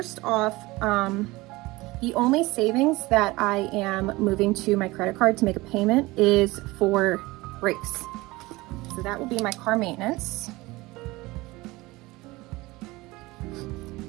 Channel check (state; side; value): quieter; left; 20.9 dB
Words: off, the only savings that I am moving to my credit card to make a payment is for brakes. So that will be my car maintenance.